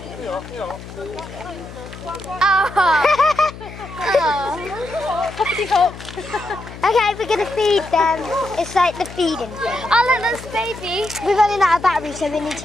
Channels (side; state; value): left; noise; hum, 14 dB below the sound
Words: Oh! Okay, we're going to feed them. It's like the feeding thing. Oh, look, that's baby. We're running out of battery, so we need